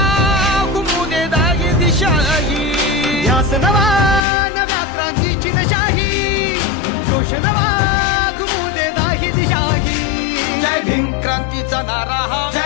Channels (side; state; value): right; drops out; at 4.2 s